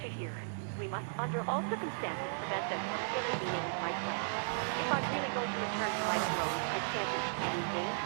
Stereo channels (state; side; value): silent; left; 54 dB below the other